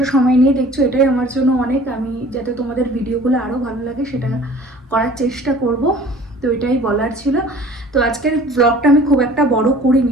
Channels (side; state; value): both; normal; correlation 0.48